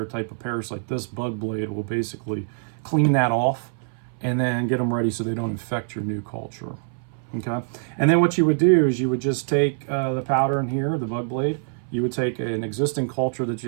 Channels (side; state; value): left; silent; 60 dB below the other